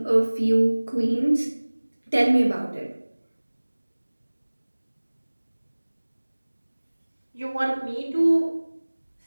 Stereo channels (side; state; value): both; inverted; correlation -1.00